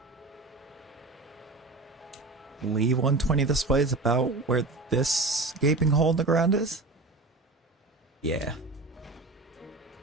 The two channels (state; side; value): quieter; left; 3.3 dB